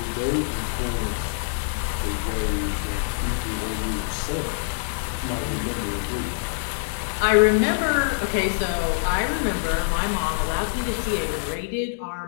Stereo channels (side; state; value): right; silent; digital silence